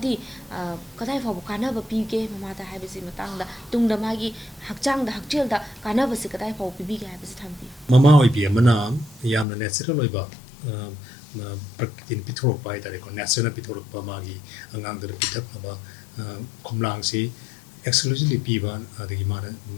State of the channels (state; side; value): drops out; right; at 9.5 s